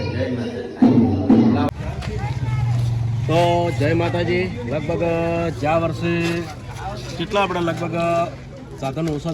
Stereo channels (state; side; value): identical; both; correlation 1.00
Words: જય માતાજી. તો જય માતાજી. લગભગ જ્યાં વર્ષે કેટલા આપણે લગભગ સાધનો